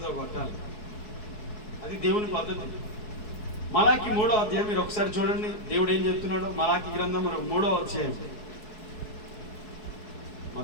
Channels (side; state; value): right; late; 4.7 ms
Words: కొట్టాలి. అది దేవుని పద్ధతి. మలాకి 3వ అధ్యాయం మీరు ఒకసారి చూడండి, దేవుడు ఏం చెప్తున్నాడో. మలాకి గ్రంథం 3వ అధ్యాయం,